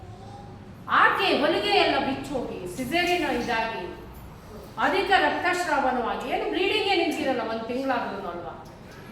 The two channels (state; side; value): identical; both; correlation 1.00